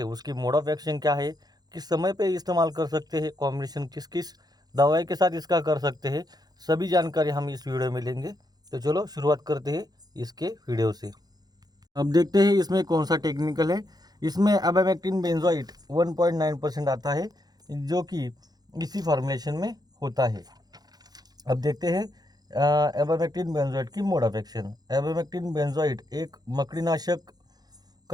उसकी मोड ऑफ एक्शन क्या है, किस समय पे इस्तेमाल कर सकते हैं, कॉम्बिनेशन किस किस दवाई के साथ इसका कर सकते हैं, सभी जानकारी हम इस वीडियो में लेंगे। तो चलो शुरुआत करते हैं इसके वीडियो से। अब देखते हैं इसमें कौन सा टेक्निकल है। इसमें अबैमेक्टिन बेंजोइट 1.9% आता है, जो कि इसी फॉर्मुलेशन में होता है। अब देखते हैं एबैमेक्टिन बेंजोइट की मोड ऑफ एक्शन। एबैमेक्टिन बेंजोइट एक मकड़ीनाशक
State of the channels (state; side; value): late; left; 0.19 ms